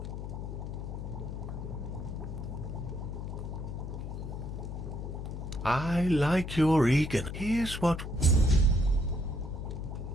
I like your eagerness. Here's what...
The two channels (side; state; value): left; noise; hum, 6 dB below the sound